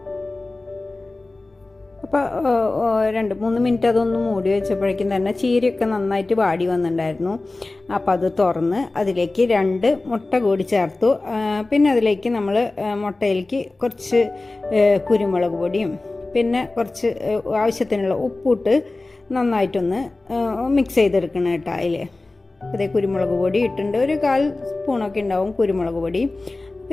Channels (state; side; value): quieter; right; 3.1 dB